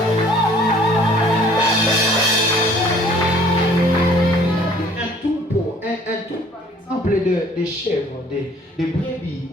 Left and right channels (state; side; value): normal; both; correlation 0.55